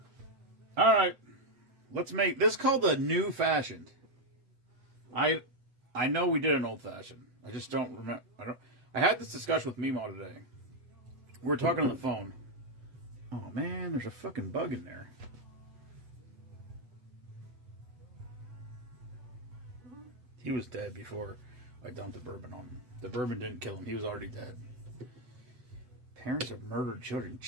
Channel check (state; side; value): late; left; 8.0 ms